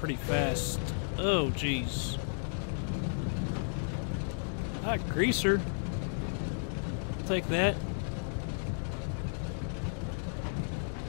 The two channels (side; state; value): right; silent; digital silence